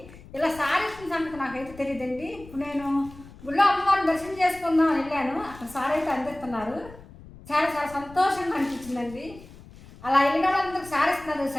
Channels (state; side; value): noise; left; rumble, 19 dB below the sound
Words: ఇలా సారీ ఇచ్చిన సంగతి నాకైతే తెలియదండి. ఇప్పుడు నేను గుళ్ళో అమ్మవారిని దర్శనం చేసుకుందాం వెళ్ళాను, అక్కడ సారీ అయితే అందిస్తున్నారు. చాలా చాలా సంతోషంగా అనిపించిందండి. అలా వెళ్ళిన వాళ్ళందరికీ సారీ ఇస్తున్నారు